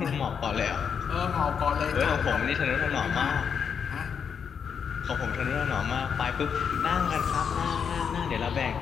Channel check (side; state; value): right; quieter; 7.0 dB